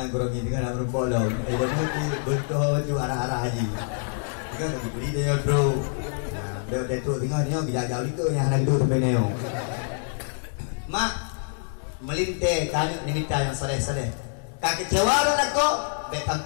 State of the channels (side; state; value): right; silent; 61 dB below the other